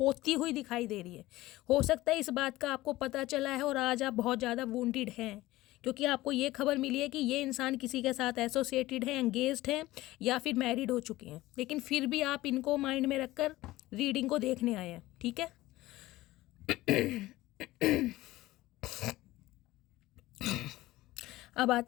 हुई दिखाई दे रही है। हो सकता है इस बात का आपको पता चला है और आज आप बहुत ज़्यादा वुंडेड हैं, क्योंकि आपको ये खबर मिली है कि ये इंसान किसी के साथ एसोसिएटेड है, एंगेज्ड हैं, या फिर मैरिड हो चुके हैं, लेकिन फिर भी आप इनको माइंड में रखकर रीडिंग को देखने आए हैं, ठीक है। अब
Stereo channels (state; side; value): quieter; right; 17.6 dB